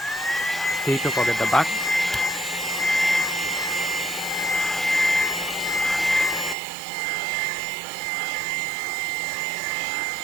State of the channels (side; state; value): left; drops out; at 6.6 s